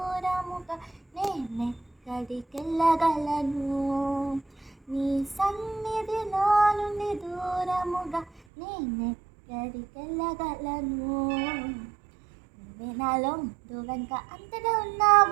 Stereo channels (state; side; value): drops out; left; at 8.4 s